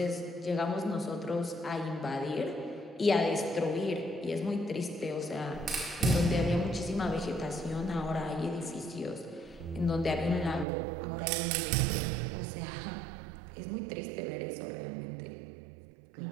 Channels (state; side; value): drops out; left; at 10.7 s